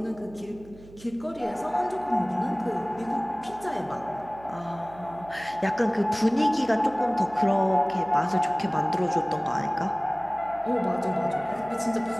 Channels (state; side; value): noise; right; hum, 20 dB below the sound